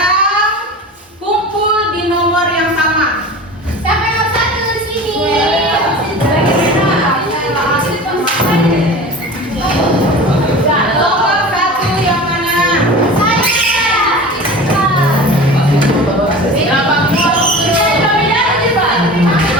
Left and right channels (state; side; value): normal; both; correlation 0.35